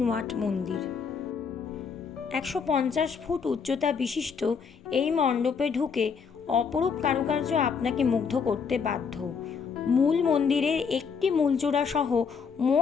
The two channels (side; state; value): right; quieter; 6.0 dB